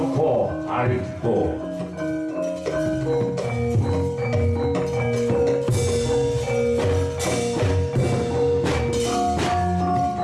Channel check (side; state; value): both; identical; correlation 1.00